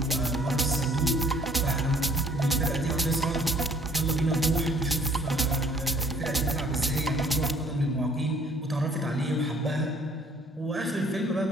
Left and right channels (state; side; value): normal; both; correlation 0.58